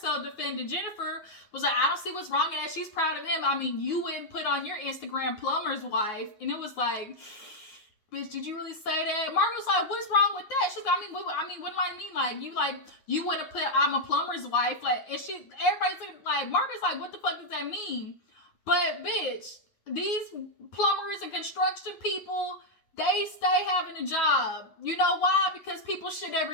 defending Jennifer, was like, I don't see what's wrong in that. She's proud of him. I mean, you wouldn't put on your Instagram plumber's wife. And it was like, bitch, did you really say that? Margaret was like, what's wrong with that? She's like, what do I mean? Like, you want to put, I'm a plumber's wife. Like, and everybody's like, Margaret's like, what the fuck does that mean? But bitch, these plumbers and construction people, they stay having a job. You know why? Because people shit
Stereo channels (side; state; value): right; late; 9.6 ms